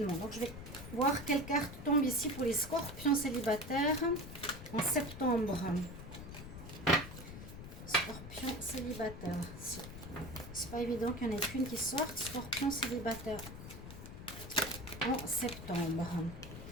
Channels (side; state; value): left; noise; rumble, 11 dB below the sound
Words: Donc je vais voir quelle carte tombe ici pour les scorpions célibataires en septembre. Scorpions célibataires. C'est pas évident qu'il n'y en ait qu'une qui sorte. Scorpions célibataires en septembre.